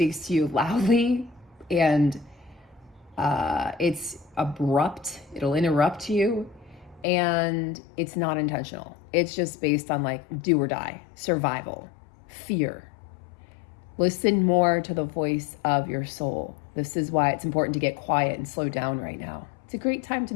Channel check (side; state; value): right; drops out; at 7.1 s